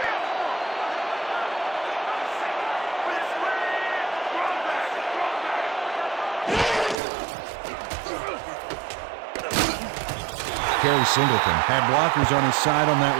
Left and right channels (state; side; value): drops out; left; at 7.0 s